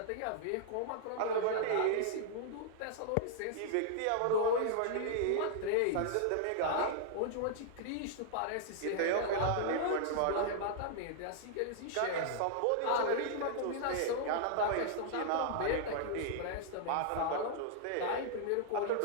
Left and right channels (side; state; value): both; different; correlation -0.01